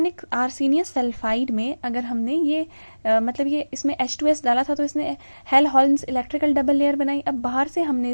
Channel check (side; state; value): both; inverted; correlation -1.00